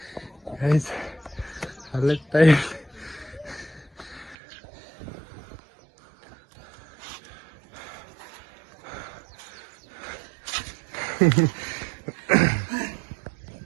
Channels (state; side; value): drops out; left; at 4.4 s